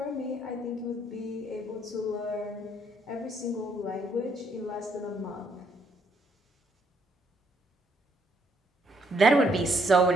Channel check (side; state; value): both; normal; correlation 0.70